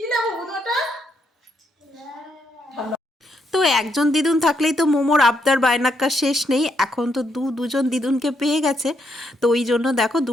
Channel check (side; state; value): both; normal; correlation 0.77